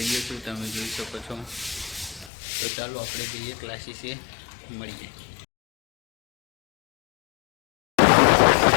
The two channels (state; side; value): drops out; right; at 2.3 s